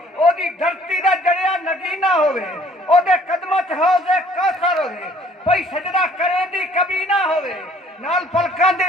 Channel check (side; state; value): both; normal; correlation 0.57